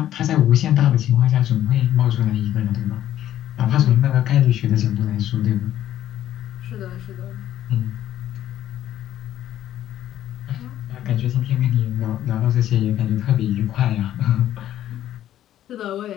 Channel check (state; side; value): quieter; right; 12.0 dB